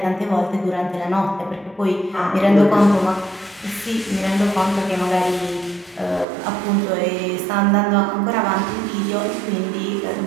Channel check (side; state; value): left; drops out; at 6.2 s